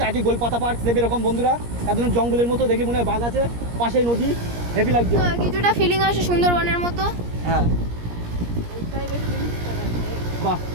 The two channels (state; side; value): late; left; 17 ms